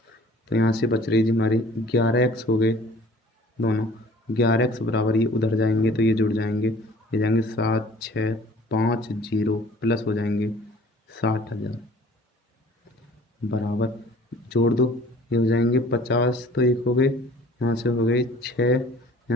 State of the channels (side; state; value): both; normal; correlation 0.50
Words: तो यहाँ से बच रही जी हमारी 11x हो गए दोनों, 11x बराबर ये उधर जाएंगे तो ये जुड़ जाएंगे, ये जाएंगे 7650 प्लस हो जाएंगे 60,000 बराबर, जोड़ दो ये हो जाएंगे 50, तो एक हो गए, यहाँ से हो गए 6,